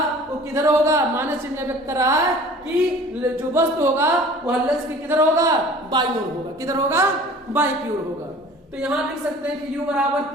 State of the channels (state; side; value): normal; both; correlation 0.46